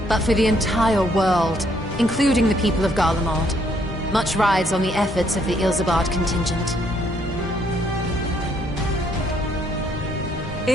but for the entire world, including the people of Garlemald. Much rides on the efforts of the Ilsabard contingent.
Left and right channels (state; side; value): normal; both; correlation 0.69